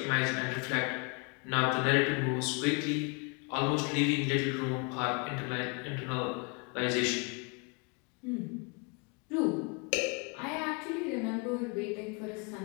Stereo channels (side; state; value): right; quieter; 33.0 dB